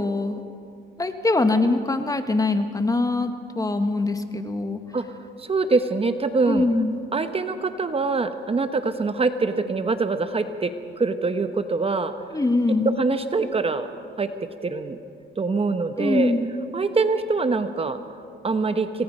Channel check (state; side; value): normal; both; correlation 0.67